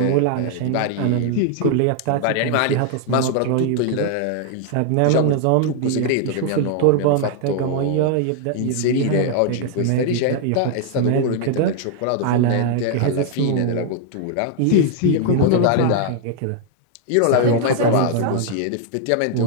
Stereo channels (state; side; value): different; both; correlation 0.00